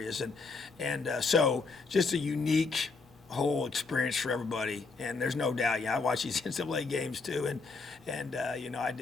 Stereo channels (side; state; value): right; quieter; 4.2 dB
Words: and so just a unique whole experience for everybody. And there's no doubt, I watch these NCAA games too, and I